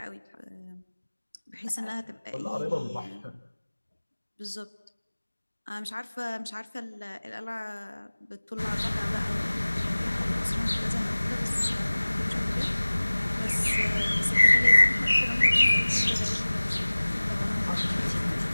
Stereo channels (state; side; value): inverted; both; correlation -1.00